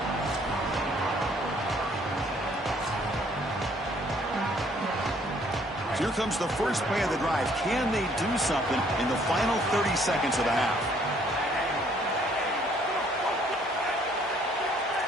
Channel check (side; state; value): both; normal; correlation 0.63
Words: So here comes the first play of the drive. Can they do something in the final 30 seconds of the half?